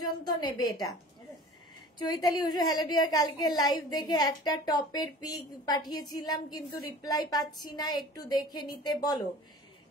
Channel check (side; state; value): both; normal; correlation 0.43